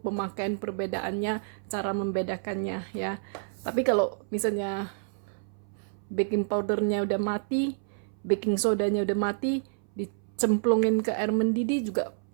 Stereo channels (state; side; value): silent; left; 59 dB below the other